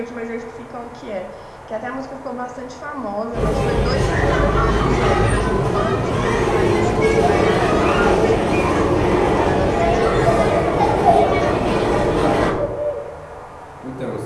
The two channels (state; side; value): identical; both; correlation 1.00